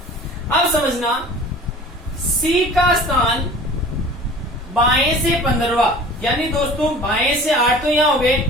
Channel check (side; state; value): both; normal; correlation 0.43